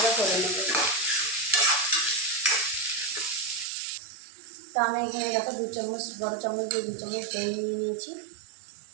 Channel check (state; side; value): drops out; left; at 3.7 s